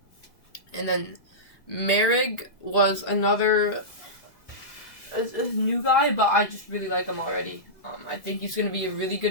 And then Merrick was another a new guy, but I just really like him already. I think he's going to be a really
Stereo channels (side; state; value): right; late; 1.8 ms